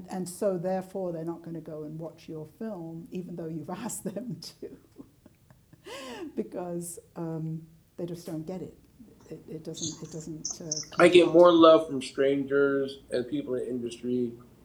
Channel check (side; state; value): both; identical; correlation 1.00